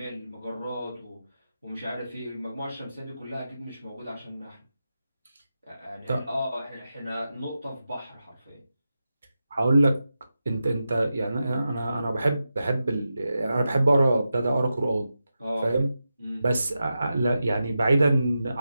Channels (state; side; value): inverted; both; correlation -0.90